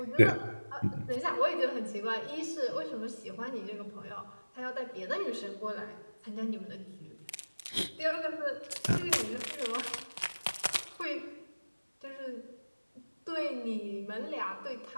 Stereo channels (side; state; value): both; inverted; correlation -1.00